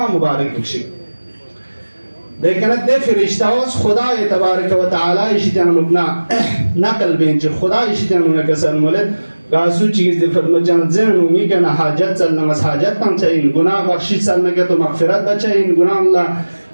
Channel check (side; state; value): both; inverted; correlation -1.00